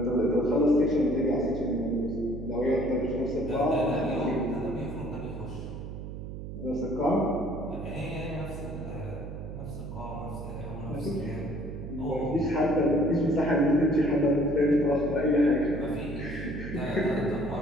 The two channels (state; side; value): noise; right; hum, 9 dB below the sound